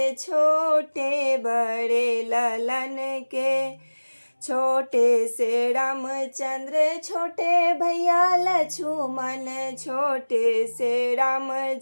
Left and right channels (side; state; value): both; inverted; correlation -1.00